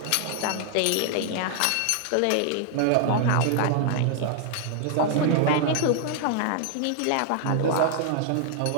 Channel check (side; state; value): both; different; correlation 0.00